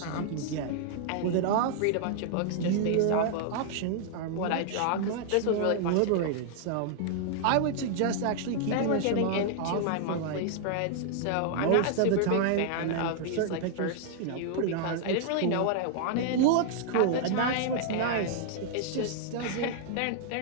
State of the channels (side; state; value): both; different; correlation -0.01